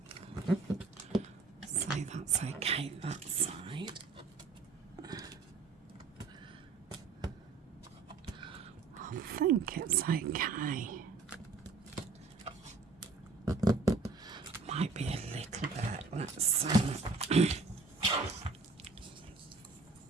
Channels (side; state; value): left; quieter; 4.2 dB